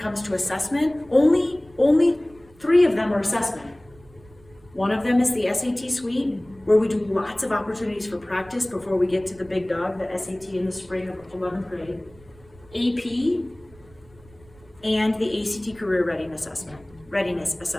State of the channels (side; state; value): right; noise; rumble, 25 dB below the sound